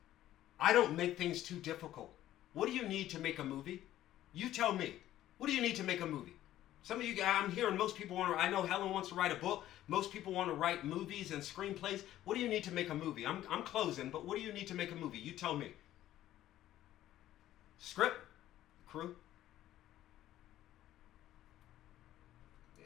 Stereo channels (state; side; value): quieter; right; 13.3 dB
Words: I don't make things too difficult. What do you need to make a movie? You tell me. What do you need to make a movie? Some of you guys, I'm hearing most people I know Helen wants to write a book. Most people want to write movies and screenplays. What do you need to make a movie? I'm closing, but what do you need to make a movie? You tell me. Script, crew,